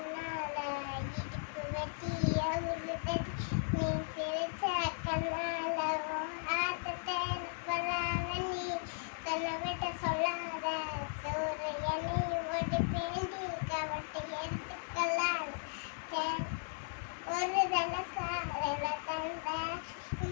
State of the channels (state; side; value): silent; right; 53 dB below the other